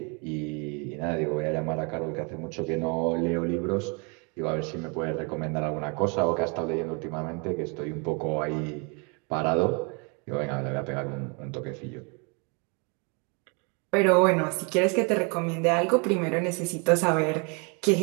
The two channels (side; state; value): left; quieter; 33.5 dB